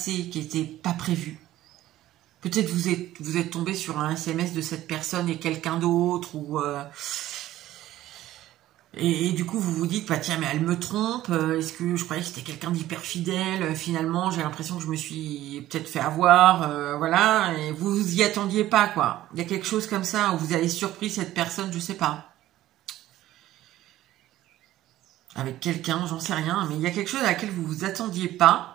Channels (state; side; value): quieter; left; 14.4 dB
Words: qui n'était pas prévu. Peut-être vous êtes tombé sur un SMS de cette personne et quelqu'un d'autre, et du coup vous vous dites, bah tiens, mais elle me trompe, est-ce que je croyais que c'était quelqu'un d'hyper fidèle, finalement j'ai l'impression que je me suis peut-être fait avoir, voilà, et vous vous y attendiez pas, quoi. Il y a quelque chose comme ça, où vous avez surpris cette personne, je sais pas. Avec quelqu'un, j'en sais rien, mais il y a quelque chose à laquelle vous vous attendiez pas.